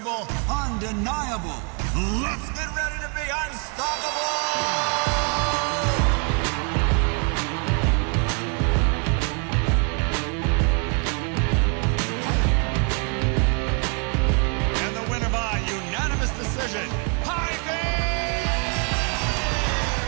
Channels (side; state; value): left; quieter; 37.5 dB